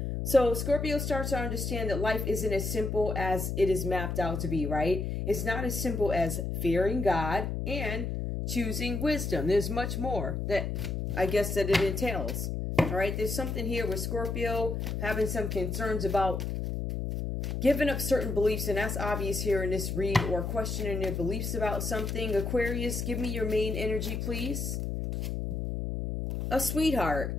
So Scorpio starts to understand that life isn't as simple as it is mapped out to be, right? It's not as simple as fearing God and choosing wisdom. There's much more that I guess that it entails. All right, there's something here with Scorpio having some concerns about giving up certain beliefs, and that's obvious here in this read, or questioning their beliefs about something. Aquarius, give me your main energy, please. A sweetheart.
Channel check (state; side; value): noise; left; hum, 2 dB below the sound